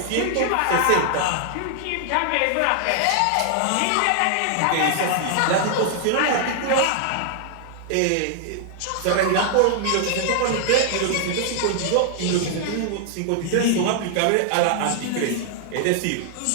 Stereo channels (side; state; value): both; different; correlation 0.00